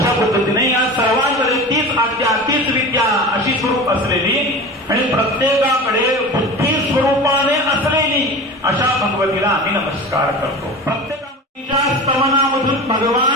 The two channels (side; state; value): both; normal; correlation 0.32